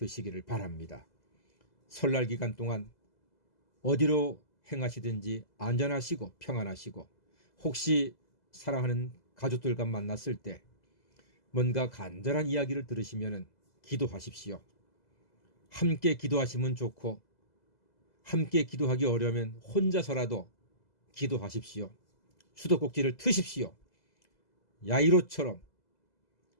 바랍니다. 설날 기간 동안 어디로 행하시든지 안전하시고 평안하시고, 혹시 사랑하는 가족들과 만났을 때 뭔가 간절한 이야기를 들으시면 기도하십시오. 함께 기도하시면 좋고, 함께 기도하기 어려우면 혼자서라도 기도하십시오. 수도꼭지를 트십시오. 야이로처럼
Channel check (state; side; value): late; right; 2.0 ms